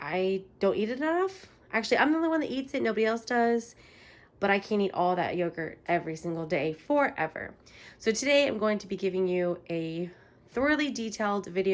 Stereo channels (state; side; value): identical; both; correlation 1.00